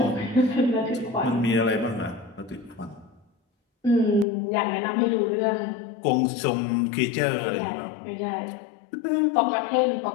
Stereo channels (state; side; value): drops out; right; at 4.2 s